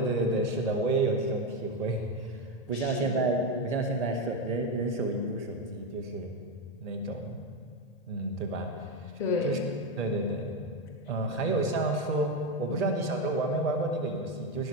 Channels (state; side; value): late; right; 1.8 ms